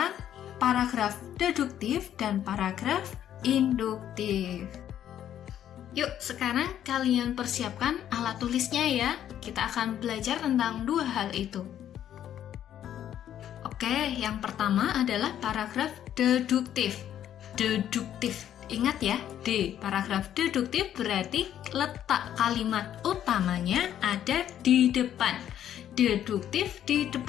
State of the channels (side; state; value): right; quieter; 10.7 dB